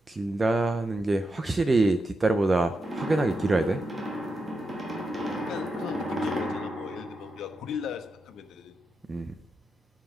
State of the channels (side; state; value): both; normal; correlation 0.87